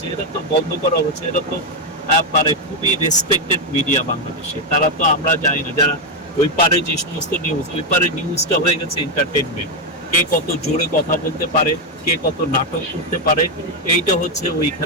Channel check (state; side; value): normal; both; correlation 0.04